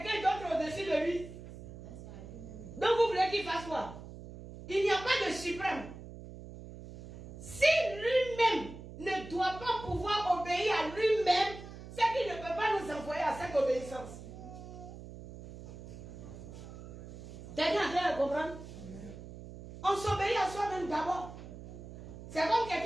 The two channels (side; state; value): right; noise; hum, 13 dB below the sound